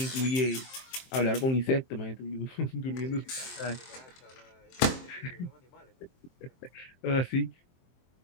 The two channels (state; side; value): late; right; 23 ms